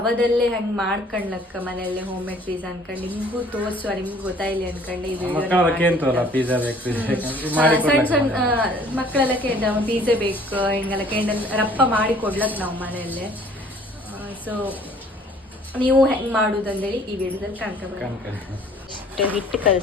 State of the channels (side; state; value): both; normal; correlation 0.55